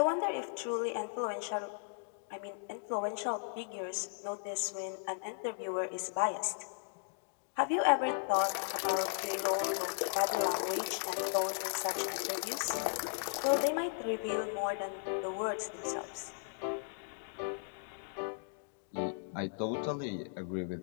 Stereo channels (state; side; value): silent; right; digital silence